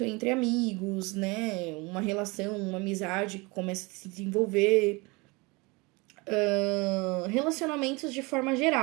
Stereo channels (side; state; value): left; quieter; 26.0 dB